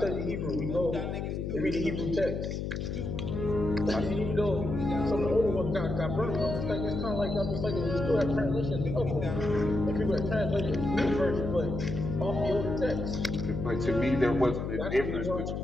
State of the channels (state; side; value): noise; left; hum, 3 dB below the sound